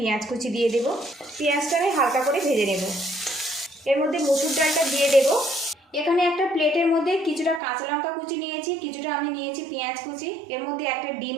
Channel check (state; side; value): drops out; left; at 7.6 s